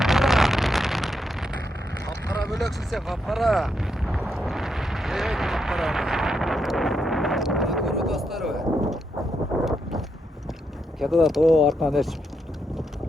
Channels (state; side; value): normal; both; correlation 0.81